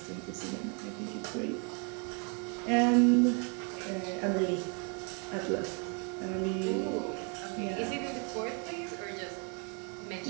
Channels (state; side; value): quieter; left; 36.5 dB